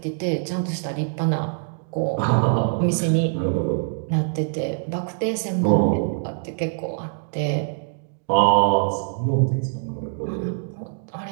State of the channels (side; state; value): left; silent; digital silence